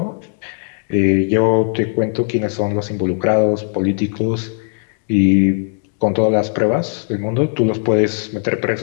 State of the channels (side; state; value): right; silent; digital silence